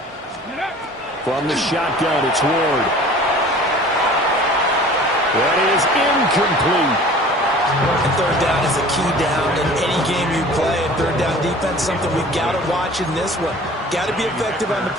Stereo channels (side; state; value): both; normal; correlation 0.45